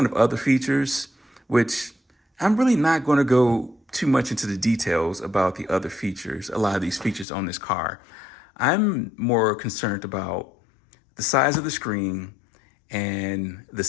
of other features, which I'm really not going to go too much into the details about the other features, a lot of these features on this car. I'm more concerned about the size of the screen and the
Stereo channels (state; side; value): drops out; right; at 7.2 s